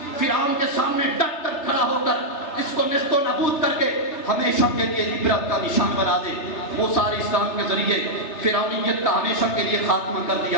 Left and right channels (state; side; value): late; right; 3.3 ms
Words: فرعون کے سامنے ڈٹ کر کھڑا ہو کر اس کو نیست و نابود کر کے ہمیشہ کے لیے عبرت کا نشان بنا دے۔ موسیٰ علیہ السلام کے ذریعے فرعونیت کا ہمیشہ کے لیے خاتمہ کر